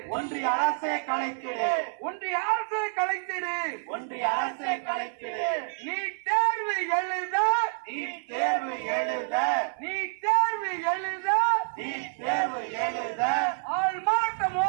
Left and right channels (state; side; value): silent; left; 59 dB below the other